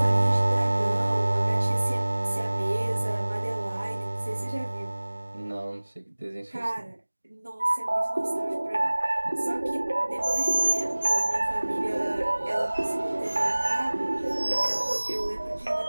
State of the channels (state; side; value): inverted; both; correlation -1.00